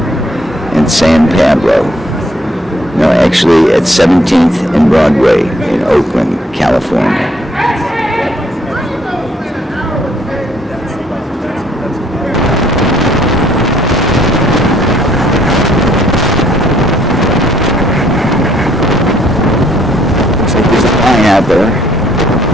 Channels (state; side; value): normal; both; correlation 0.67